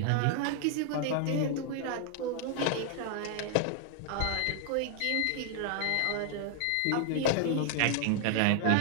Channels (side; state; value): both; different; correlation 0.00